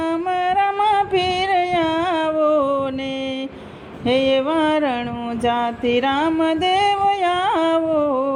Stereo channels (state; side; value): identical; both; correlation 1.00